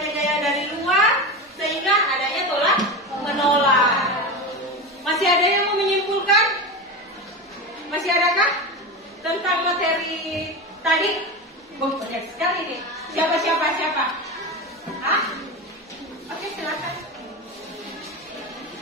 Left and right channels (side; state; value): both; normal; correlation 0.22